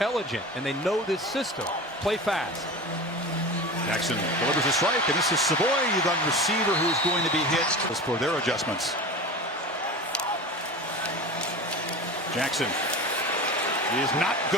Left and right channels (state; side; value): normal; both; correlation 0.31